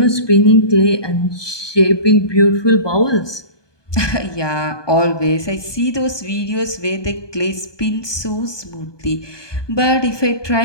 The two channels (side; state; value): right; late; 1.2 ms